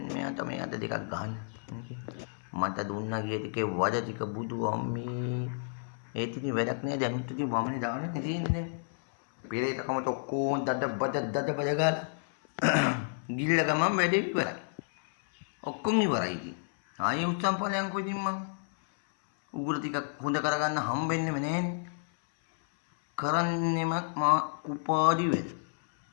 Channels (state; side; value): silent; right; 57 dB below the other